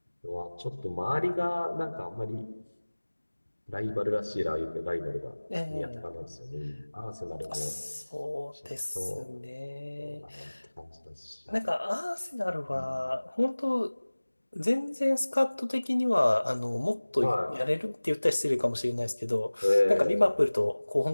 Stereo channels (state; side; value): inverted; both; correlation -1.00